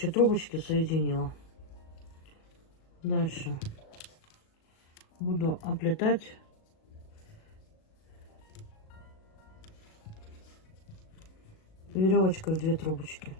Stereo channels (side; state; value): right; late; 37 ms